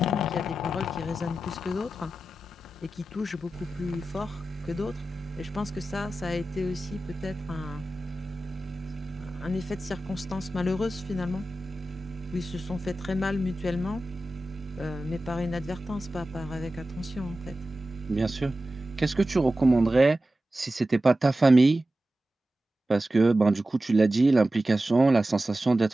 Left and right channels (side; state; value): both; normal; correlation 0.94